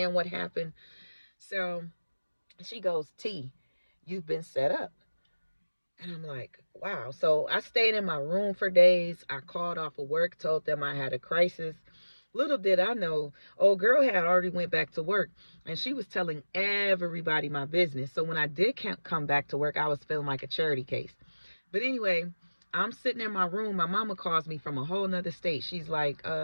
what happened. So she goes, "T, you've been set up." And I'm like, wow. So I stayed in my room for days. I called off of work, told them I had a crisis. Little did I know, old girl had already went back to work, and she was telling everybody my business. So when I did come back to work, I was feeling like a charity case. But anyway, I'm sitting in my room. My mama calls me from a whole nother state. She's like,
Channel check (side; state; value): both; inverted; correlation -1.00